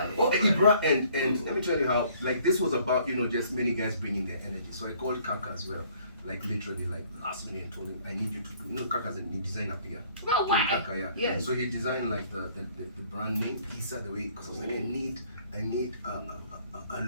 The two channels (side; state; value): both; inverted; correlation -0.60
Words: Oh, Ibra, and let me tell you how, like, this was about, you know, just many guys bringing their energy. So I called Kaka as well, like literally, like last minute, and told him I need you to do. You know, Kaka's a design up here. No way. Kaka, yeah. Yes. So he designed like the brand name, Issa, the way, because I was like, I need a